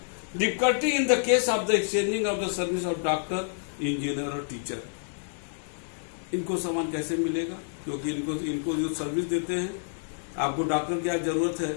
Difficulty in the case of the exchanging of the service of doctor, engineer और टीचर। इनको सामान कैसे मिलेगा? क्योंकि इनको जो सर्विस देते हैं, आपको डॉक्टर की आज जरूरत है,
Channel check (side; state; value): right; silent; digital silence